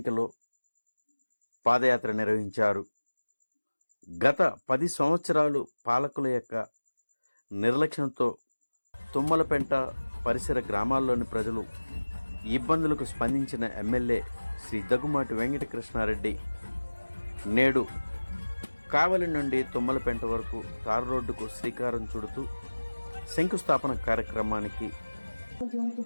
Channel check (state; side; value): inverted; both; correlation -1.00